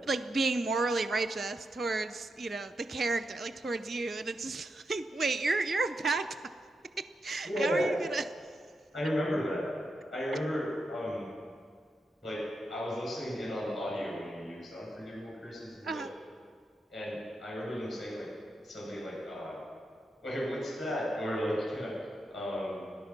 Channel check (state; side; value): normal; both; correlation 0.85